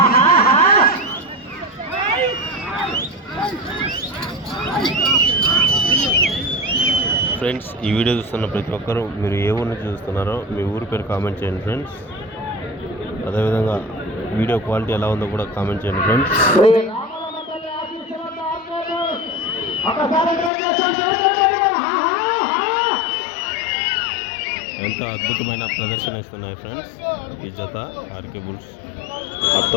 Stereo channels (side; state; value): right; drops out; at 20.5 s